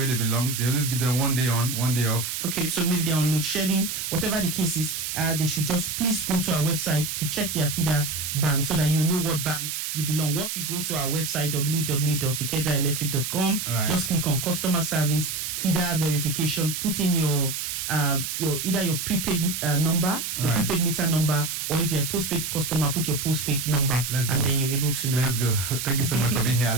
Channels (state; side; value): noise; right; hiss, 4 dB below the sound